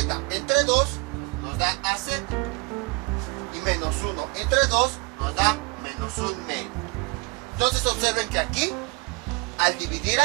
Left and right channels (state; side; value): quieter; left; 27.5 dB